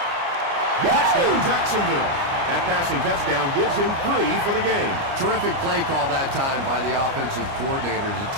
Touchdown, Jacksonville. That passing touchdown gives him 3 for the game. Terrific play call that time by the offensive coordinator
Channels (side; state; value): left; late; 30 ms